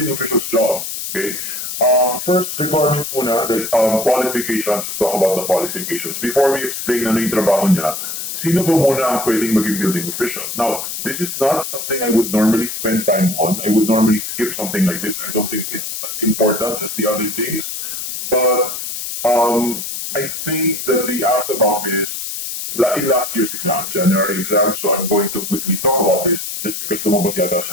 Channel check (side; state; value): left; noise; hiss, 5 dB below the sound